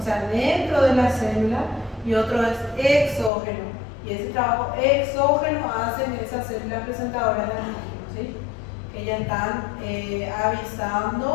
sea, dentro de la célula, y otro es exógeno. Y ese trabajo exógeno hacen esas células presentadoras de antígeno, ¿sí? Que ya están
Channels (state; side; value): drops out; right; at 3.3 s